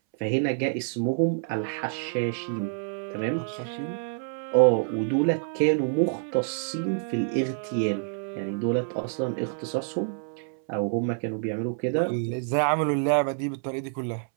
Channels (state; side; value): silent; left; 60 dB below the other